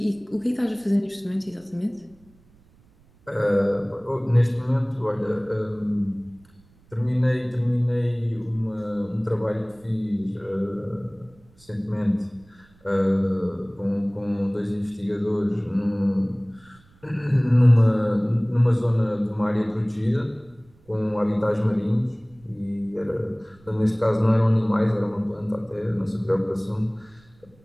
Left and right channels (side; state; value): right; noise; rumble, 29 dB below the sound